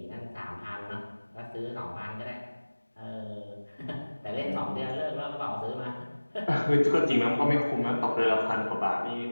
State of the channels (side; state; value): both; inverted; correlation -1.00